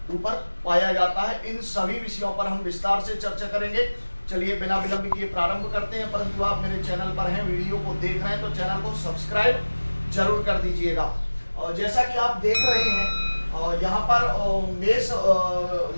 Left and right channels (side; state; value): both; inverted; correlation -1.00